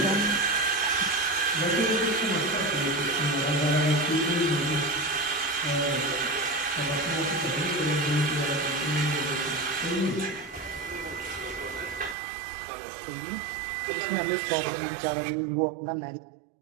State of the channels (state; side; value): drops out; left; at 12.2 s